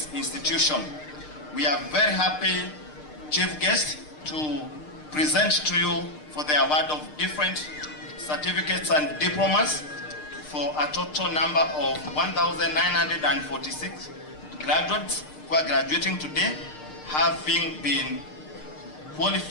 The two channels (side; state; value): right; late; 6.6 ms